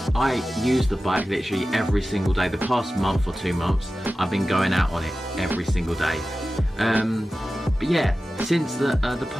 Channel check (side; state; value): both; normal; correlation 0.94